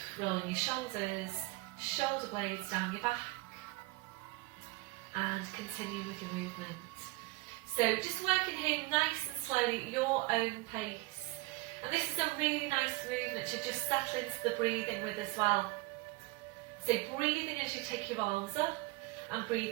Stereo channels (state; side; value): quieter; left; 22.2 dB